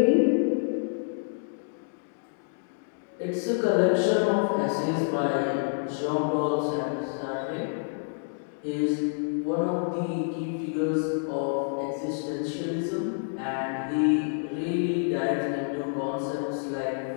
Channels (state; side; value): silent; right; digital silence